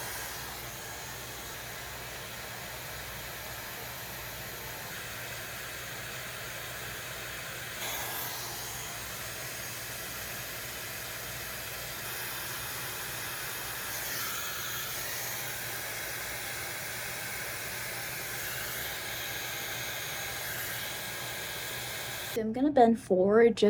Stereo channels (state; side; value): identical; both; correlation 1.00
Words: I'm gonna bend forward